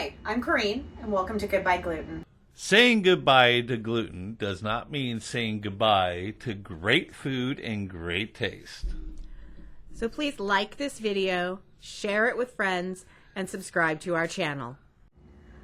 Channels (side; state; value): both; identical; correlation 1.00